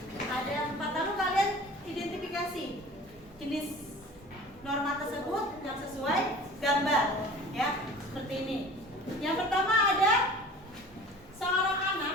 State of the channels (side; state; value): both; normal; correlation 0.43